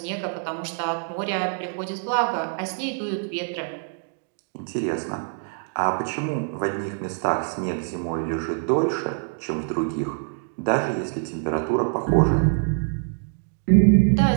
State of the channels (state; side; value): silent; left; 62 dB below the other